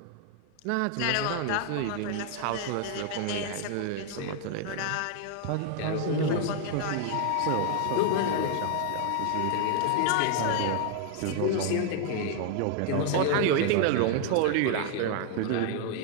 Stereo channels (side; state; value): both; different; correlation 0.00